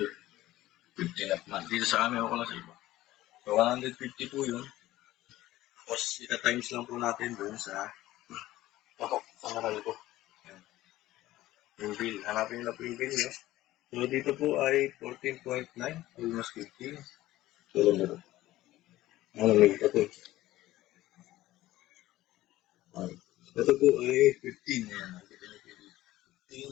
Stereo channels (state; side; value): quieter; right; 15.9 dB